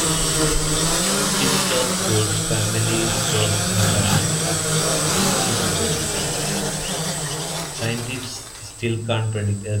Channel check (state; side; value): identical; both; correlation 1.00